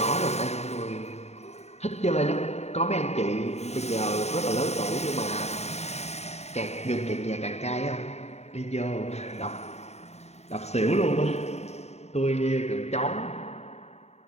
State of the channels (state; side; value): late; right; 0.32 ms